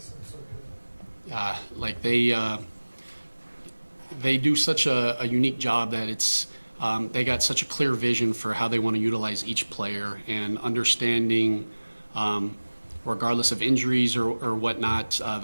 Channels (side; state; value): both; inverted; correlation -1.00